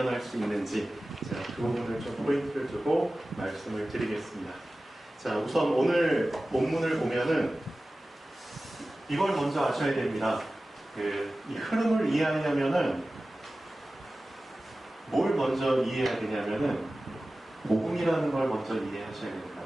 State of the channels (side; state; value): both; normal; correlation 0.96